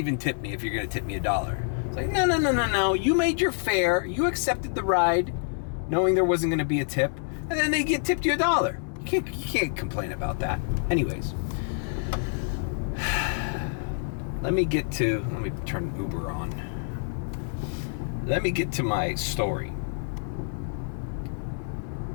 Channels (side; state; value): right; silent; 60 dB below the other